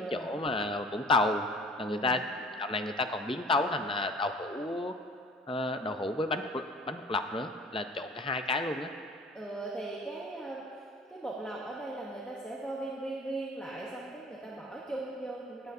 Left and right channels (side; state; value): both; normal; correlation 0.47